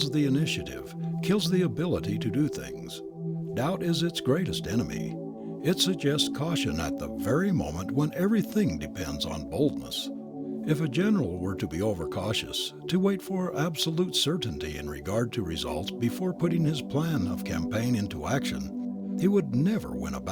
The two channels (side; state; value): both; identical; correlation 1.00